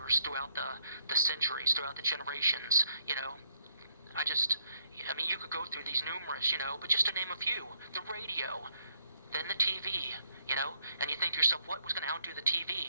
throughout the centuries, throughout the generations, you could go through these numerous, but just to name a few, the radio, then the TV, and you think to yourself, what was going to outdo the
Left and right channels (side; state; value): both; inverted; correlation -0.71